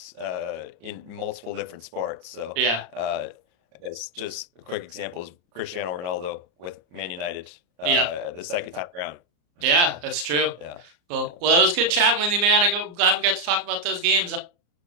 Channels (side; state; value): left; late; 34 ms